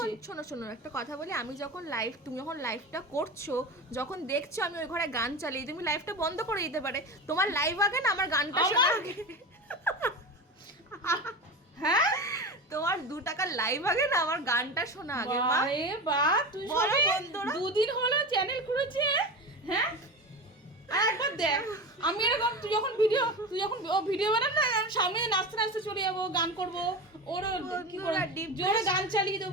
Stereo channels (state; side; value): normal; both; correlation 0.26